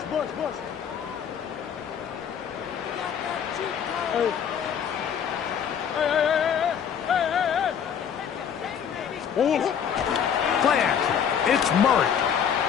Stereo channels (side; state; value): right; quieter; 8.0 dB